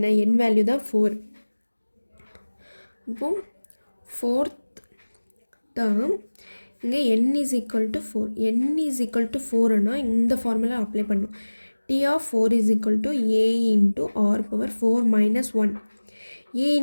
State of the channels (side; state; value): both; inverted; correlation -1.00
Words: n வேல்யூ தான் 4. இப்போ ஃபோர்த் டேர்ம் இங்கே n is equal to 4. n is equal to 4னா இந்த formula apply பண்ணும். T of 4 is equal to a into r power 4 minus 1. a